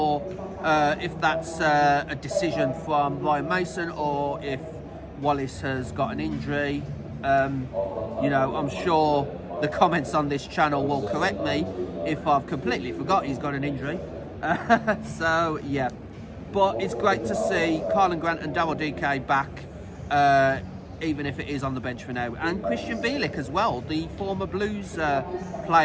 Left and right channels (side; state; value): both; identical; correlation 1.00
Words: if that's a decision from Ryan Mason or if Wallace has got an injury. You know, I'm sure the comments on this channel will correct me if I've completely forgot he's got an injury. So yeah, but it's great to see Carlin Grant and Daryl DK back, even if it is on the bench for now, and Christian Bielik as well, the former Blues